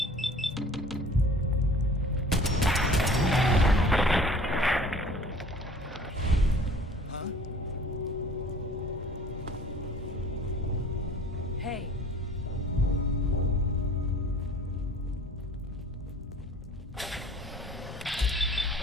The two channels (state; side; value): normal; both; correlation 0.49